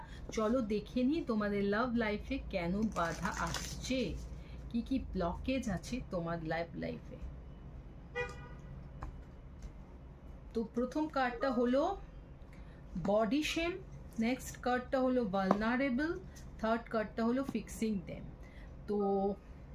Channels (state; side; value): identical; both; correlation 1.00